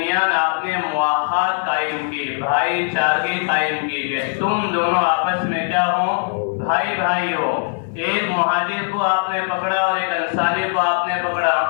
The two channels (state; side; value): silent; right; 62 dB below the other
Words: آپ نے مواخات قائم کی، بھائی چارگی قائم کی کہ تم دونوں آپس میں کیا ہو، بھائی بھائی ہو. ایک مہاجر کو آپ نے پکڑا اور ایک انصاری کو آپ نے پکڑا